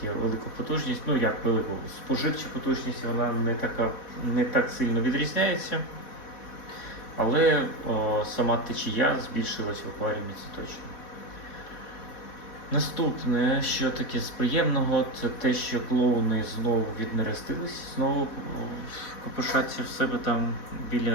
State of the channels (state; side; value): late; right; 4.1 ms